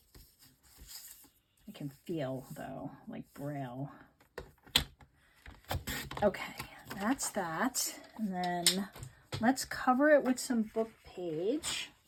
I can feel though, like Braille. Okay, that's that. And then let's cover it with some book page.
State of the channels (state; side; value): identical; both; correlation 1.00